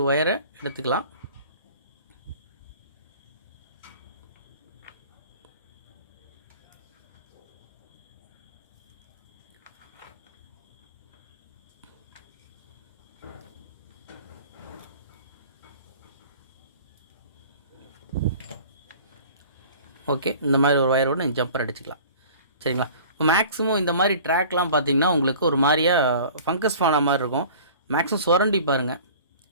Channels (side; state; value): both; inverted; correlation -0.45